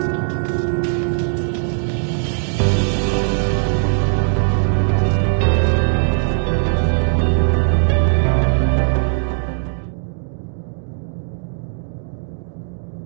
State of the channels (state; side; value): silent; left; digital silence